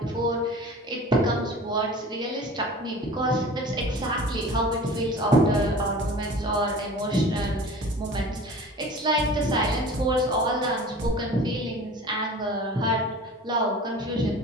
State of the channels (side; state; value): both; normal; correlation 0.40